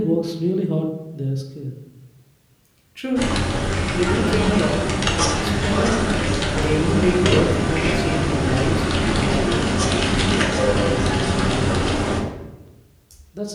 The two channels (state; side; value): identical; both; correlation 1.00